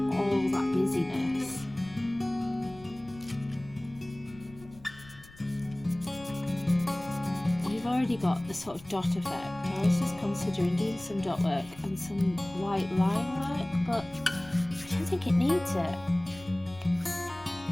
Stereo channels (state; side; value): noise; left; rumble, 21 dB below the sound